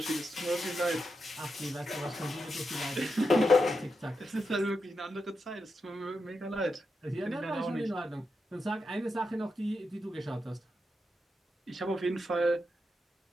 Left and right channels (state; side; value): normal; both; correlation 0.86